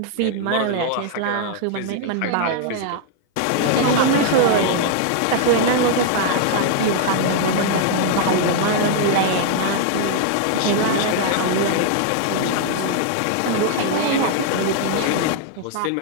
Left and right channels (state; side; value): different; both; correlation 0.00